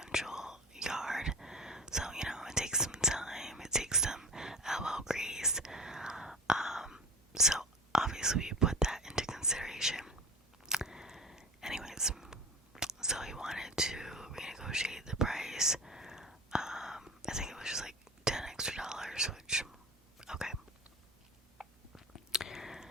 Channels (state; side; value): normal; both; correlation 0.32